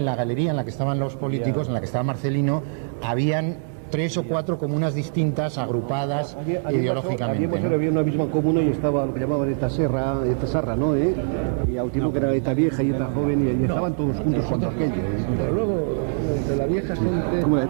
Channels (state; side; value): silent; left; 63 dB below the other